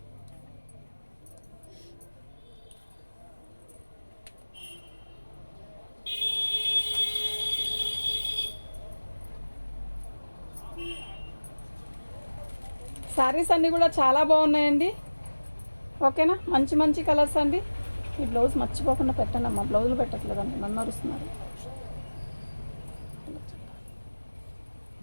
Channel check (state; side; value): inverted; both; correlation -1.00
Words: శారీస్ అన్నీ కూడా చాలా బాగున్నాయండి. ఓకేనా, మంచి మంచి కలర్స్ అండి. ఈ బ్లౌజ్ మర్చిపోకుండా పెట్టండి అమ్మా, బ్లౌజులు పెట్టట్లేదండి, నన్ను అరుస్తున్నారు.